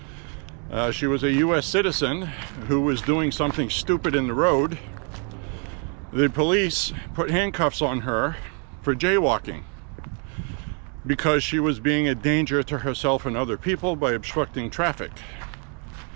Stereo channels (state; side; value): quieter; left; 38.2 dB